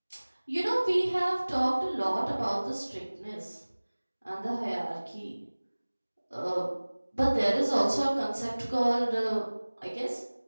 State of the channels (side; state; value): both; inverted; correlation -1.00